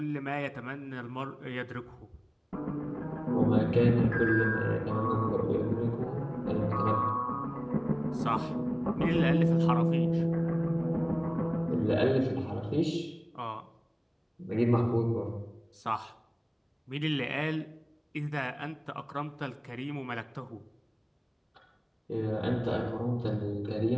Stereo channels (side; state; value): both; identical; correlation 1.00